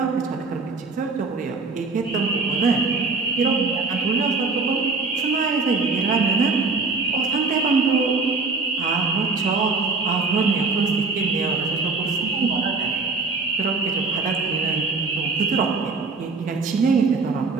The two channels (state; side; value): quieter; left; 4.1 dB